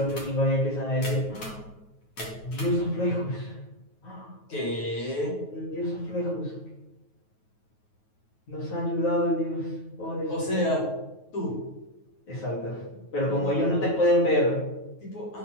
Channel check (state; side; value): late; right; 9.3 ms